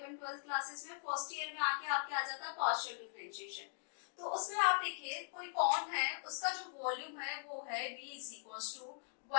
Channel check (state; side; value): silent; right; digital silence